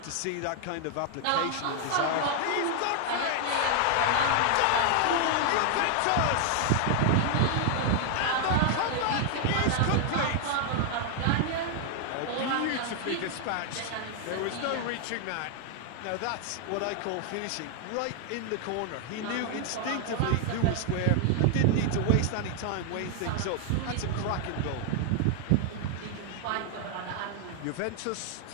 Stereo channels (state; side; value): different; both; correlation 0.00